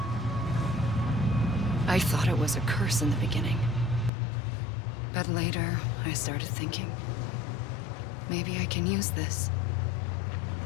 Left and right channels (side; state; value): right; drops out; at 4.1 s